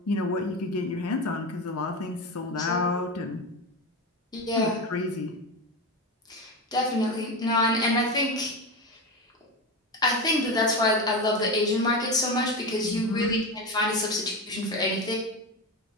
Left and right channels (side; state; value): both; normal; correlation 0.19